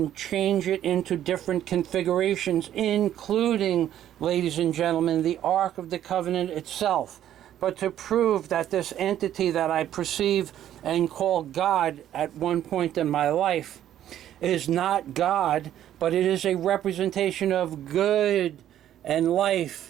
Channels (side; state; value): left; quieter; 11.5 dB